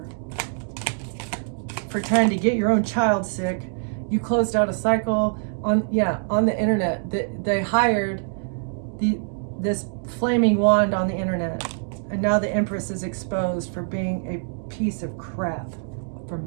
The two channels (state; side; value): silent; left; 59 dB below the other